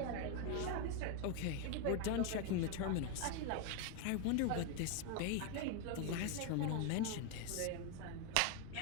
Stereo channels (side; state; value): both; different; correlation 0.01